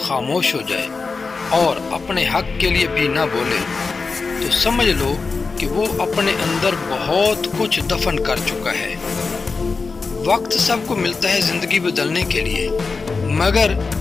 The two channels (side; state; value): right; quieter; 4.4 dB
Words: ہو جائے اور اپنے حق کے لیے بھی نہ بولے تو سمجھ لو کہ وہ اپنے اندر بہت کچھ دفن کر چکا ہے۔ وقت سب کو ملتا ہے زندگی بدلنے کے لیے، مگر